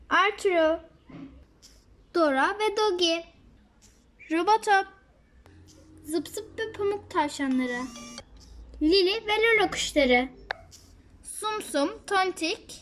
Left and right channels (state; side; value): identical; both; correlation 1.00